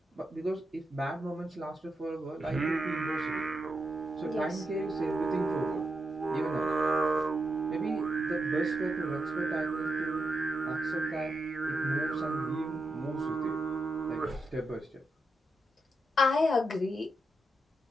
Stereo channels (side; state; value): both; normal; correlation 0.85